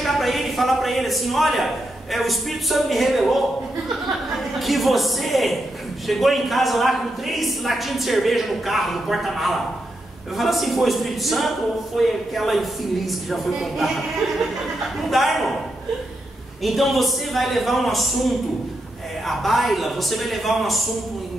para ele e falar para ele assim: olha, o Espírito Santo me revelou que você chegou em casa lá com 3 latinhas de cerveja no carro, no porta-mala. Eu falo assim: foi o Espírito Santo ou foi aquela infeliz que já foi contada? Não dá, irmão. Então você vai levar um assunto à baila, você vai levar um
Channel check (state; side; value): normal; both; correlation 0.84